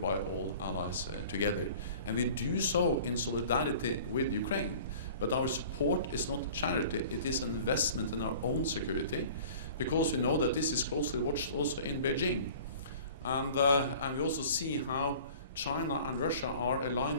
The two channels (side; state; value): both; inverted; correlation -0.45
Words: all allies together. And we do so in solidarity with Ukraine. But our support is not charity, it is an investment in our own security, because we know that this is closely watched also in Beijing. And we also see how China and Russia are